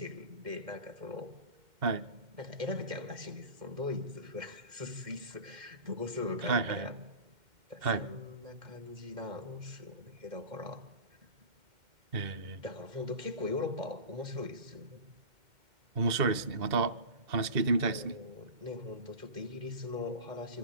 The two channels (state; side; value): late; left; 2.1 ms